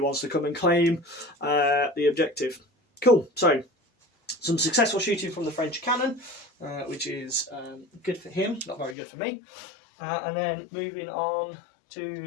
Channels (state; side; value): drops out; right; at 9.0 s